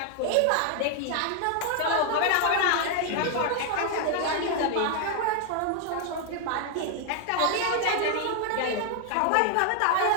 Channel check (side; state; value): both; different; correlation 0.00